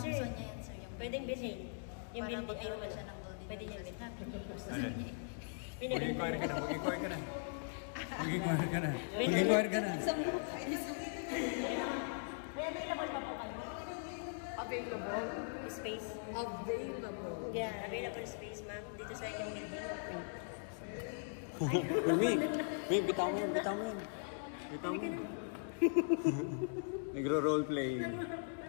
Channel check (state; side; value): silent; right; digital silence